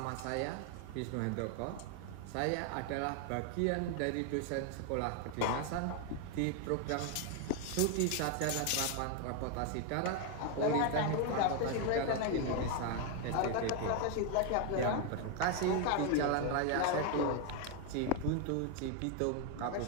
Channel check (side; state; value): both; different; correlation 0.01